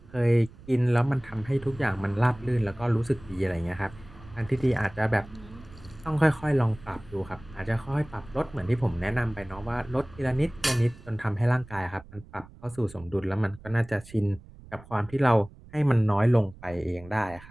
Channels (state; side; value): noise; right; rumble, 20 dB below the sound